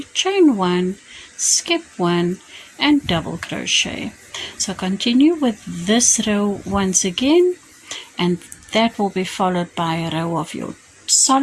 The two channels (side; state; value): both; identical; correlation 1.00